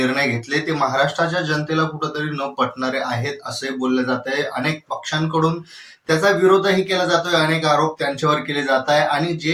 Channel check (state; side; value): identical; both; correlation 1.00